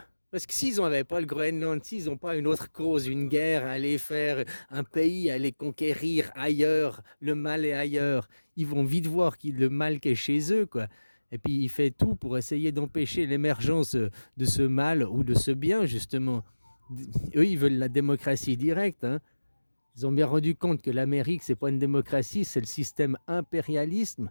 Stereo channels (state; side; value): inverted; both; correlation -1.00